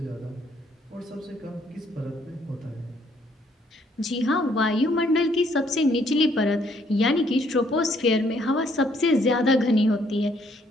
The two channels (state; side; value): normal; both; correlation 0.67